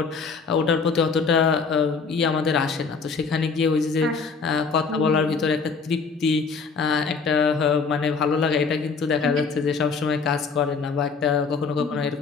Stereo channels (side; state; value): right; quieter; 5.0 dB